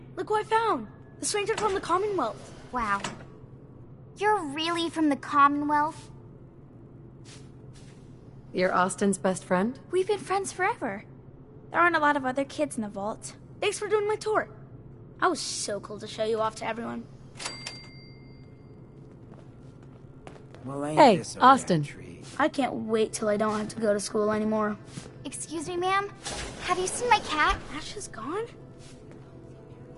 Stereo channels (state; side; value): identical; both; correlation 1.00